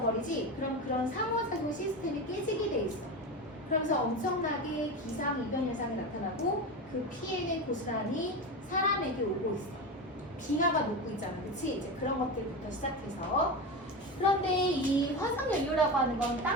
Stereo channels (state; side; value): normal; both; correlation 0.22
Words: 버리지 그럼 그런 상호작용 시스템이 깨지게 돼 있어. 그러면서 엄청나게 기상이변 현상이 나타나고 그 피해는 고스란히 사람에게 오고 있어. 빙하가 녹고 있잖아. 그치? 이제 그런 것들부터 시작해서 그런데 이 화석연료라고 하는 건